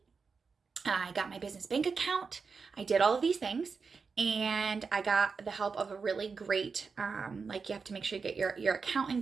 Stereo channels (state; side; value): quieter; left; 5.1 dB